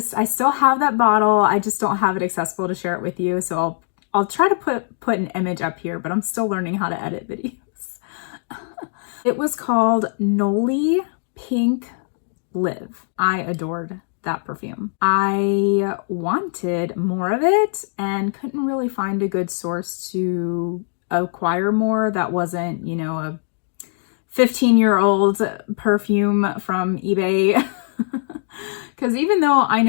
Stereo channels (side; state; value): right; silent; 65 dB below the other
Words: I still have that bottle. I just don't have it accessible to share it with you, so I'll try to put an image up here, but I'm still learning how to edit videos. It was called Nollie Pink Live. I adored that perfume. I wanted more of it and couldn't really find a good source to acquire more that wasn't, you know, a 15-year-old perfume from eBay. Because even though I